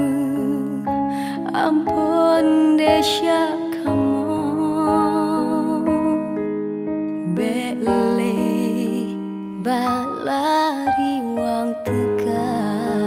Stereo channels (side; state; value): both; identical; correlation 1.00